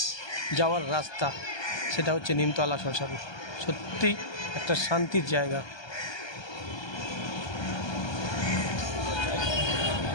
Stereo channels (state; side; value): late; right; 1.2 ms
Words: যাওয়ার রাস্তা, সেটা হচ্ছে নিমতলা শ্মশান। সত্যি একটা শান্তির জায়গা।